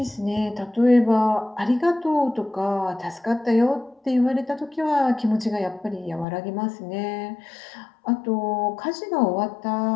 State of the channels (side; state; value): right; drops out; at 6.2 s